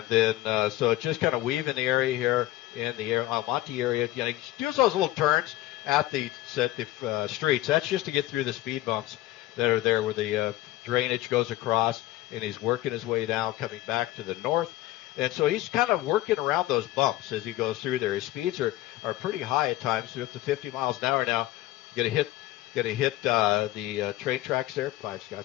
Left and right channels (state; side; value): quieter; right; 16.1 dB